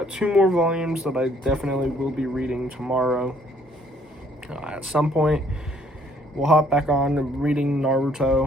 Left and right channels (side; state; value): both; normal; correlation 0.63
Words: 2 more volumes that I definitely will be reading tomorrow. At some point, we'll hop back on reading